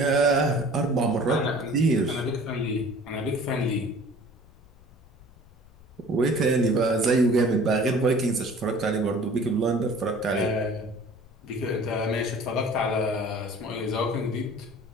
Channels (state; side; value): noise; left; rumble, 25 dB below the sound